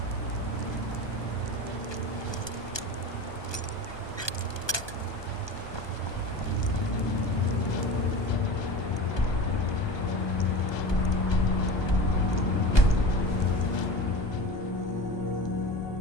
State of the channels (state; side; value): late; right; 1.2 ms